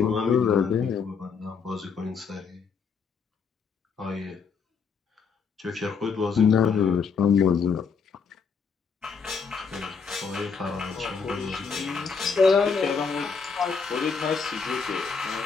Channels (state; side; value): quieter; right; 5.6 dB